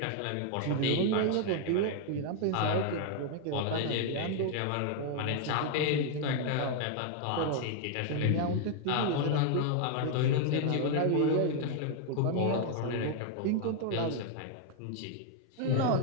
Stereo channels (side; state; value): both; different; correlation 0.00